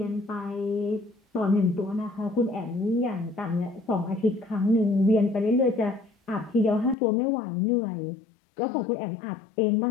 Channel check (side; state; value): right; drops out; at 7.0 s